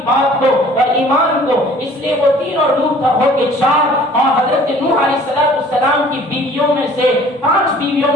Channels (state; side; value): normal; both; correlation 0.51